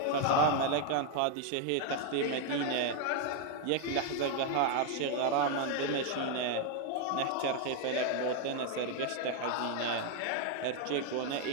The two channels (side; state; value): both; different; correlation 0.01